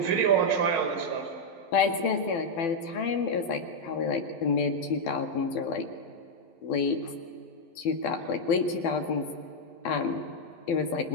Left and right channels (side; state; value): right; late; 12 ms